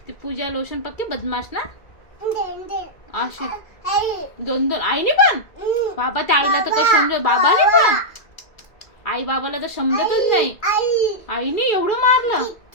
ती पूजा लोशन पक्की बदमाश ना. अशी दोन आईने पण. बाबा त्या आईला तर काही समजत. बाबाने पण. आई बाबाला तर समजतच नाही. आईने एवढं मारलं.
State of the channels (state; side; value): late; right; 2.3 ms